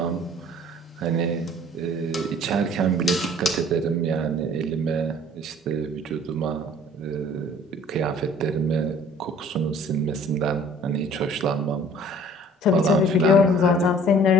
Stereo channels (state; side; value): normal; both; correlation 0.52